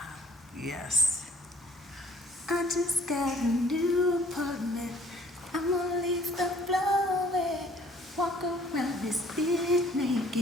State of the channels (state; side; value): normal; both; correlation 0.59